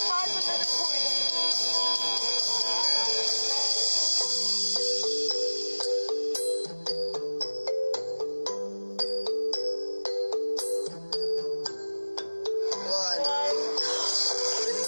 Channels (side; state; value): both; inverted; correlation -1.00